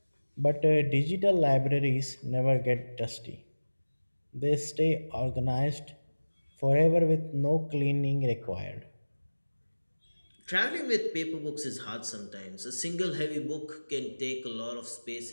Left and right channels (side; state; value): both; inverted; correlation -1.00